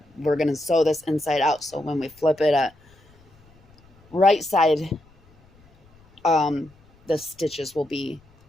we're going to sew this inside out. So when we flip it at right side, the stitches will be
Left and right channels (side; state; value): left; noise; rumble, 30 dB below the sound